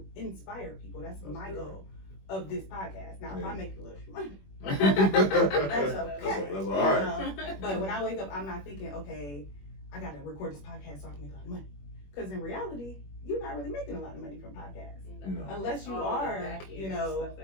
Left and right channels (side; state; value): right; late; 21 ms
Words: inspire people. That's my goal of this podcast. Now, if I make a little money, that's okay. That's all right. But when I wake up, I'm not thinking, okay, I got to record this podcast so I can make a lot of money. Because in reality, you're not really making a lot of money from podcasts. No. Unless you are, you know, stuff